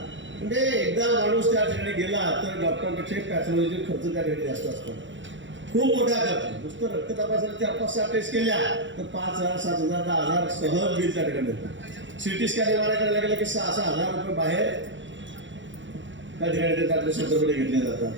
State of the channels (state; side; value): late; left; 0.54 ms